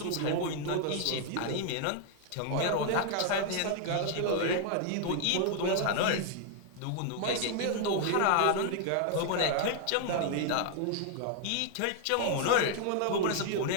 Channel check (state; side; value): different; both; correlation 0.00